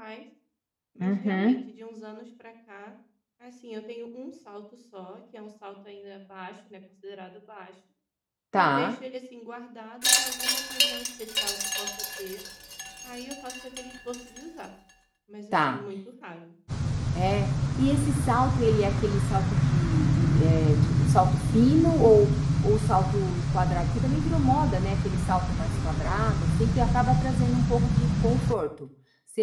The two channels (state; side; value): identical; both; correlation 1.00